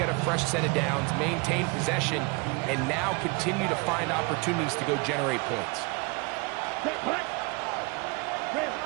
a fresh set of downs, maintain possession, and now continue to find opportunities to go generate points.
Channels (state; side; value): quieter; left; 28.8 dB